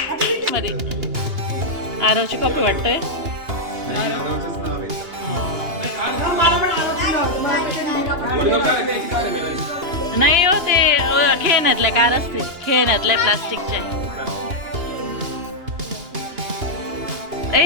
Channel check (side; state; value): left; late; 2.8 ms